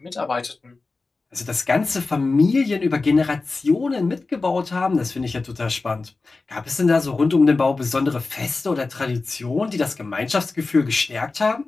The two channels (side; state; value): right; quieter; 3.7 dB